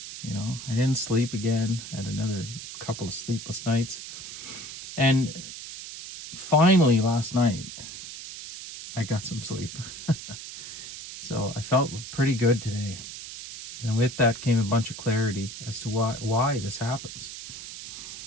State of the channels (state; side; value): noise; right; hiss, 11 dB below the sound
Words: I didn't sleep again. I had another couple of sleepless nights, and finally last night I got some sleep. So I felt pretty good today, and with that came a bunch of clarity as to why this happens.